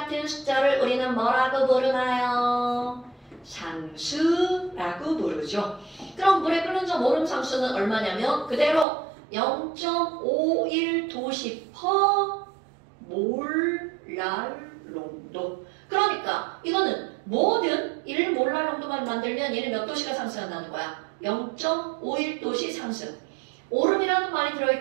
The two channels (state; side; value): drops out; left; at 8.8 s